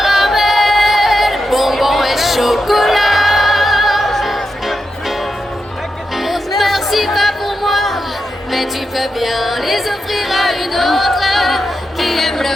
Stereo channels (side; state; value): both; normal; correlation 0.87